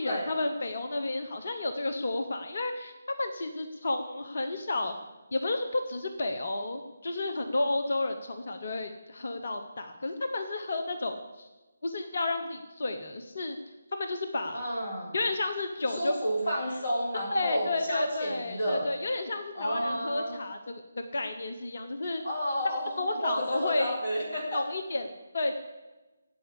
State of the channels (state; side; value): inverted; both; correlation -0.89